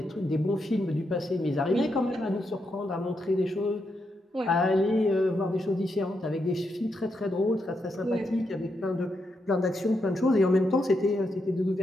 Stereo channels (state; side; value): normal; both; correlation 0.82